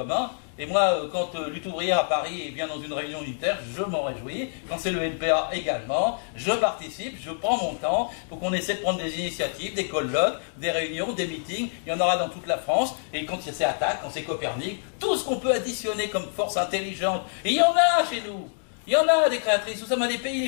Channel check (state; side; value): silent; right; digital silence